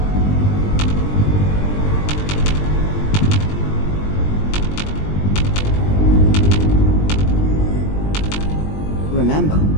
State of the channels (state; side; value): late; right; 20 ms